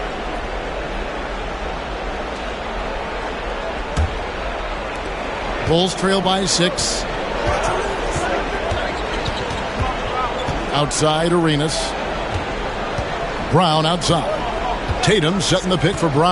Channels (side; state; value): both; identical; correlation 1.00